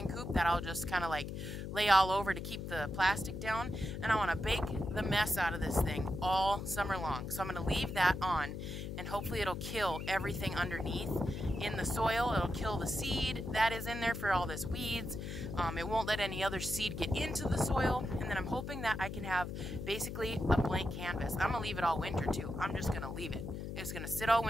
coop that I'll just kind of like lay all over to keep the plastic down. And I want to bake the mess out of this thing all summer long. So I'm going to leave that on, and hopefully it'll kill everything underneath in the soil. It'll kill the seed that is in there for all this weeds. It won't let any other seed get into the soil. And then I'm hoping that I can have basically a blank canvas. I'm going to leave it all winter too. I'm just going to leave it. It's going to sit all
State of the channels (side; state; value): left; noise; hum, 6 dB below the sound